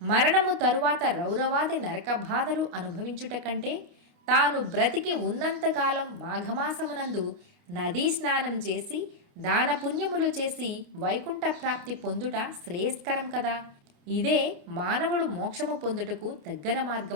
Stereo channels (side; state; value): left; late; 29 ms